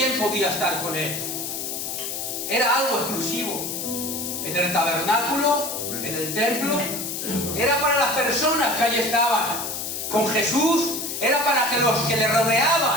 podía estar con Él? Era algo exclusivo. En el tabernáculo, en el templo, era para las personas que allí estaban. Con Jesús era para que los que le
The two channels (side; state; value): left; noise; hiss, 5 dB below the sound